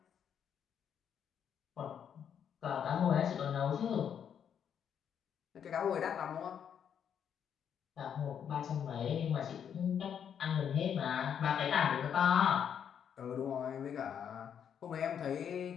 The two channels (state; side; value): quieter; right; 8.3 dB